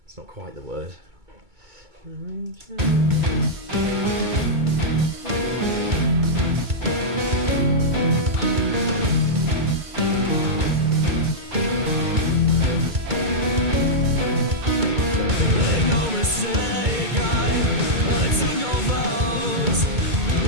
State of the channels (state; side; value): late; left; 2.2 ms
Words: It's not quite the word. Make no mistake, I took no vows.